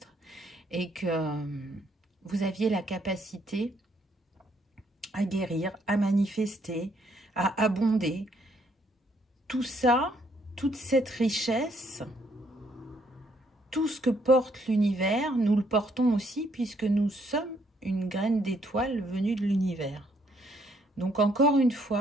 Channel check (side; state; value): both; normal; correlation 0.69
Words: et que vous aviez la capacité à guérir, à manifester, à abonder. Tout ça, toute cette richesse, tout ce que porte l'univers, nous le portons aussi puisque nous sommes une graine d'étoile venue de l'univers. Donc encore une